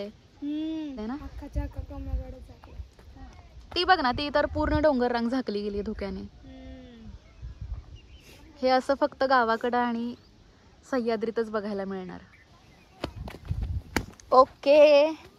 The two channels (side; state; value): both; identical; correlation 1.00